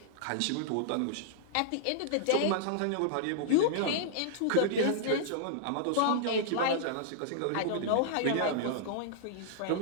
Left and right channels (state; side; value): different; both; correlation -0.02